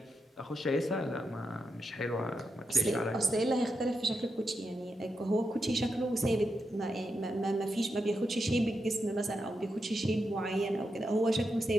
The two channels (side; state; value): both; normal; correlation 0.86